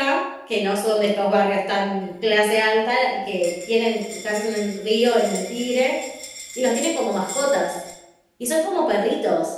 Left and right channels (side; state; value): both; identical; correlation 1.00